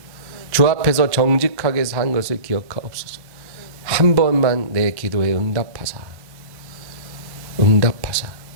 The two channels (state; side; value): late; left; 1.1 ms